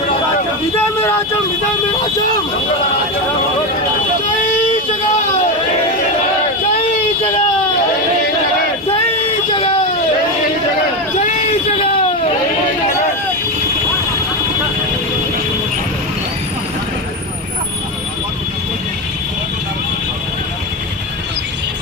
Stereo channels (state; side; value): normal; both; correlation 0.14